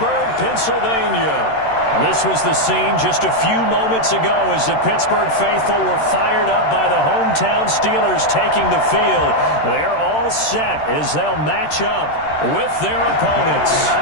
Pennsylvania. This was the scene just a few moments ago as the Pittsburgh faithful were fired up by the hometown Steelers taking the field. They're all set as they'll match up with their opponents.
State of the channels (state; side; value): late; right; 13 ms